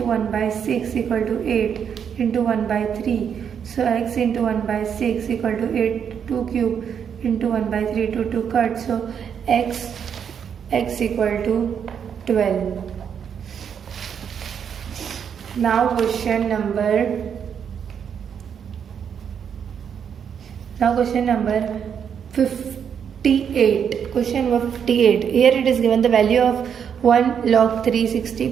1 by 6 equal to 8 into 1 by 3. So x into 1 by 6 equal to 8, 2 cube into 1 by 3, 2 cut. So x equal to 12. Now question number 58. Question number 58. Here it is given the value of 1 log 360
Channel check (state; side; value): quieter; left; 7.7 dB